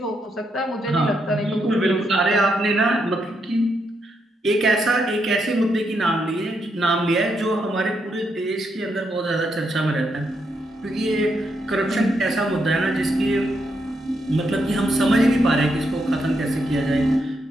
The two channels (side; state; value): both; normal; correlation 0.80